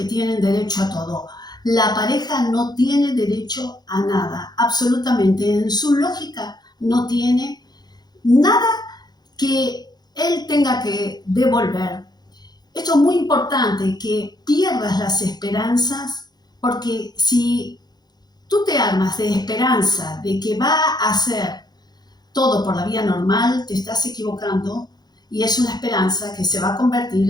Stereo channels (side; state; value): right; late; 0.20 ms